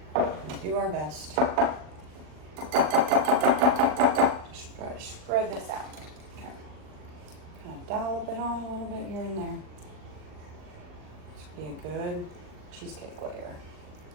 gonna do our best. Just try to spread this out. Okay. Kind of dollop it on a little bit here and there. This would be a good cheesecake layer.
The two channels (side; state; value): left; late; 39 ms